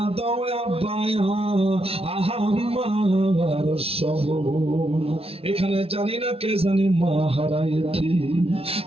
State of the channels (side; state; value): left; late; 0.28 ms